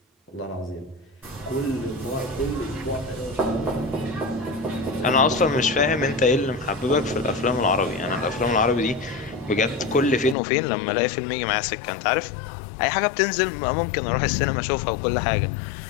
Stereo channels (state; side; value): drops out; right; at 10.4 s